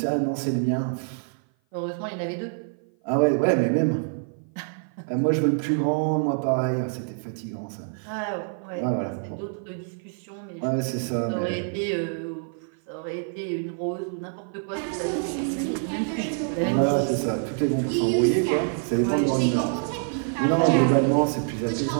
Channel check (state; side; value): silent; left; 55 dB below the other